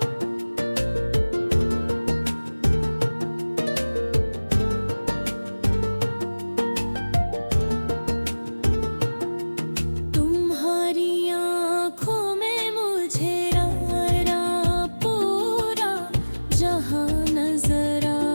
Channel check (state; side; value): inverted; both; correlation -1.00